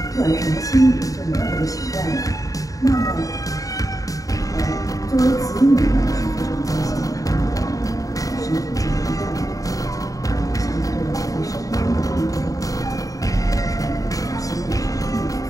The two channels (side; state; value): right; late; 0.17 ms